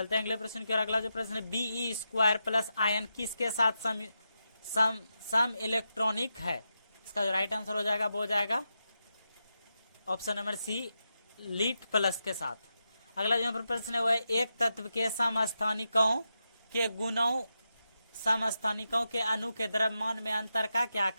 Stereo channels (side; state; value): both; inverted; correlation -0.87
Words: हैं अगले प्रश्न की ओर। अगला जो प्रश्न है Be2 प्लस आयन किसके साथ सम इलेक्ट्रॉनिक है। इसका जो राइट आंसर हो जाएगा वो हो जाएगा option number C lead plus के साथ। अगला जो प्रश्न है वो है एक तत्व के समस्थानिकों के गुणों समस्थानिकों के अणु के द्रव्यमान में अंतर का क्या